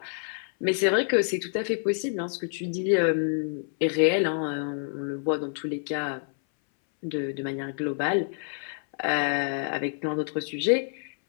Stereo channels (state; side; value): silent; right; 60 dB below the other